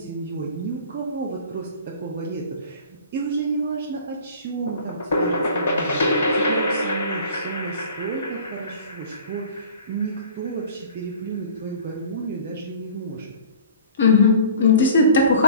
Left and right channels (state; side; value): inverted; both; correlation -0.44